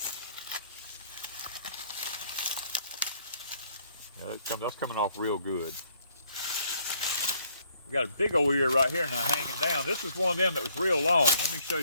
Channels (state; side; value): inverted; both; correlation -0.66